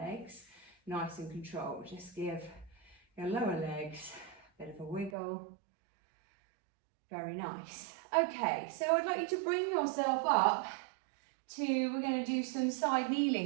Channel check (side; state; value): left; drops out; at 5.2 s